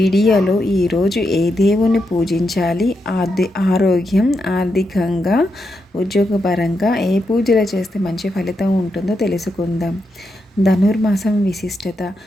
ఈరోజు ఏ దేవుని పూజించాలి, ఆరోగ్యం, ఆర్థికంగా, ఉద్యోగపరంగా ఏ పూజలు చేస్తే మంచి ఫలితం ఉంటుందో తెలుసుకుందాం. ధనుర్మాసం విశిష్టత.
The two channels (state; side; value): normal; both; correlation 0.84